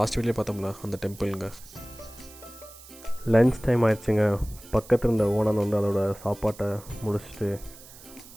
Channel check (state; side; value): noise; right; hiss, 19 dB below the sound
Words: வீடியோ பார்த்தோம்ல அந்த டெம்பிளுங்க. லன்ச் டைம் ஆயிடுச்சுங்க. பக்கத்தில் இருந்த ஓனர் வந்து அதோட சாப்பாட்டை முடிச்சுட்டு